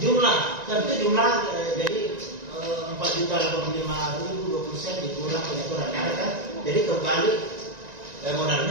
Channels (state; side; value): late; left; 1.9 ms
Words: tentu jumlah jadi 4.085.020 sen dikurang penyetoran, ada kan? Jadi kembali